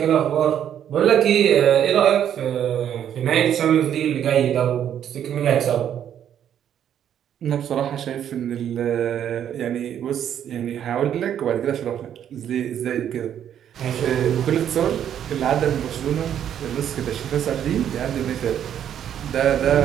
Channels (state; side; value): quieter; left; 9.7 dB